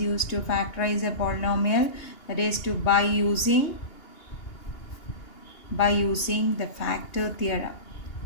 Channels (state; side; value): late; right; 2.8 ms